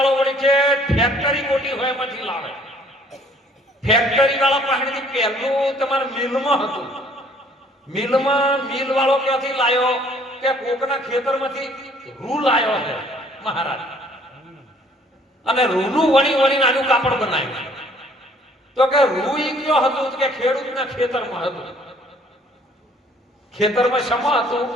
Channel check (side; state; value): both; normal; correlation 0.59